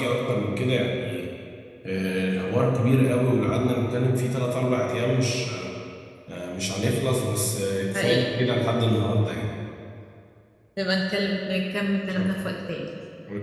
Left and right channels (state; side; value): identical; both; correlation 1.00